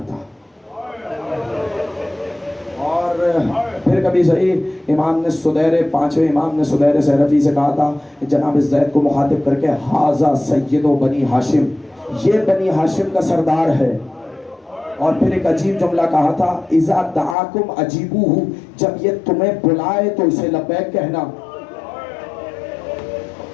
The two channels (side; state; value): right; drops out; at 17.4 s